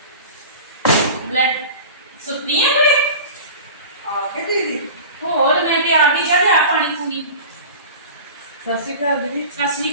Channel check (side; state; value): both; inverted; correlation -0.35